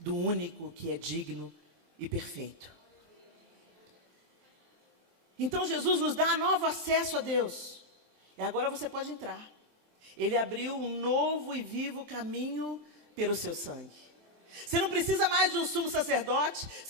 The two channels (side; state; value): left; late; 24 ms